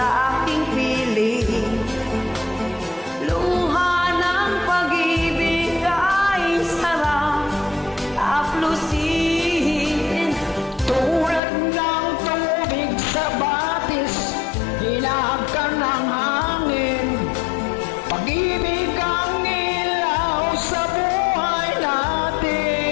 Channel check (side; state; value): right; drops out; at 11.4 s